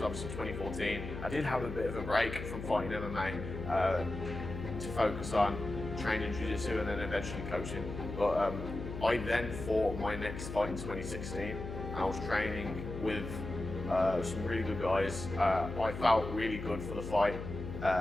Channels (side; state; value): left; noise; hum, 8 dB below the sound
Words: obviously 2014. I did have a bit of a break from fighting MMA to focus on training jiu-jitsu and then eventually coaching. But I then fought my next fight in 2016, and I was training with some really good guys. I felt really good for the fight.